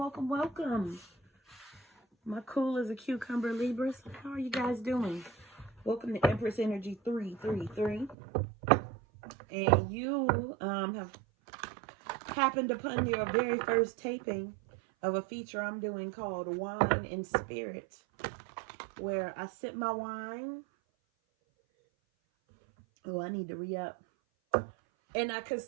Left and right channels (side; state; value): left; drops out; at 8.2 s